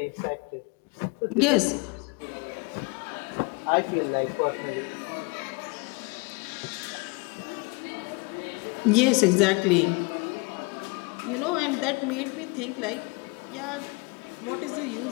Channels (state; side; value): quieter; right; 29.1 dB